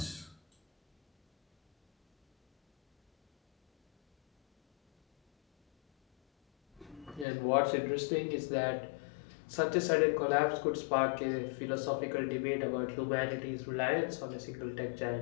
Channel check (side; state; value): right; drops out; at 7.2 s